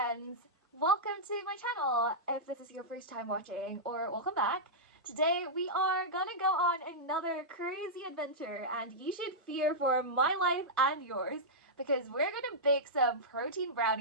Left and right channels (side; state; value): both; normal; correlation -0.10